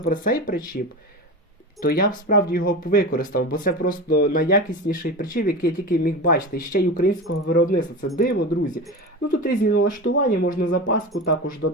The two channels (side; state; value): both; normal; correlation 0.27